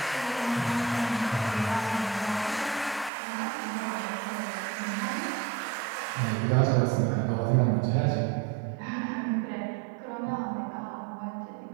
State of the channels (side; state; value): left; drops out; at 3.1 s